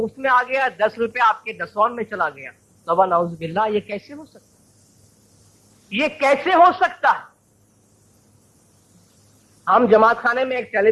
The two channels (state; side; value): identical; both; correlation 1.00